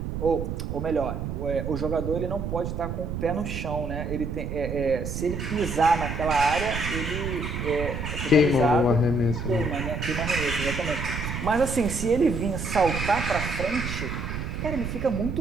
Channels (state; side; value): noise; right; rumble, 4 dB below the sound